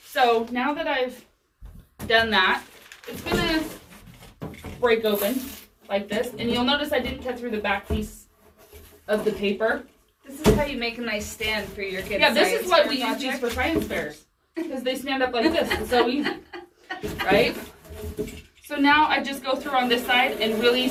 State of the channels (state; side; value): identical; both; correlation 1.00